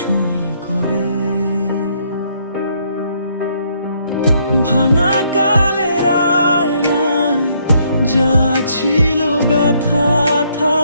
করে। ভাঙা কালের আয়নায় যা ছিল ব্যথা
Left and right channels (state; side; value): inverted; both; correlation -0.70